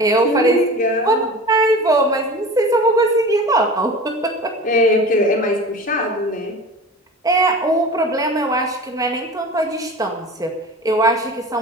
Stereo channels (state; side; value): normal; both; correlation 0.36